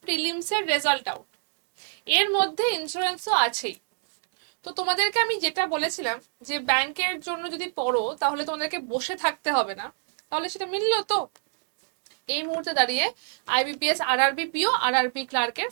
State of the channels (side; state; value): left; silent; digital silence